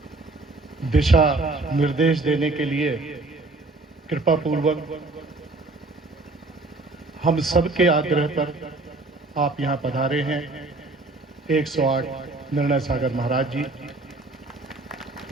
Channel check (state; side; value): quieter; left; 3.3 dB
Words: दिशा निर्देश देने के लिए कृपा पूर्वक हम सबके आग्रह पर आप यहाँ पधारे हैं। 108 निर्णय सागर महाराज जी।